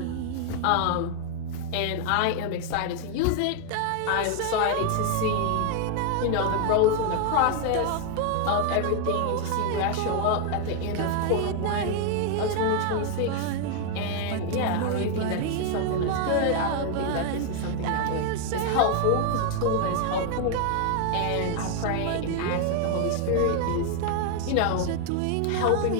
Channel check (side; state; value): both; different; correlation 0.00